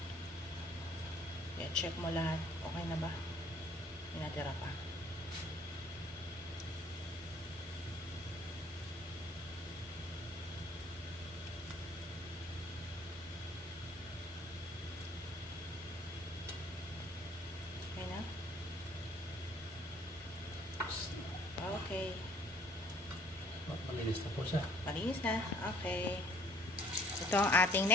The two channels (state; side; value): normal; both; correlation 0.58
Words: Yeah, check mo lahat. Okay na ba? May natira pa. Okay na? Okay. Malinis na po siya. Malinis na. Okay. Ito ang ating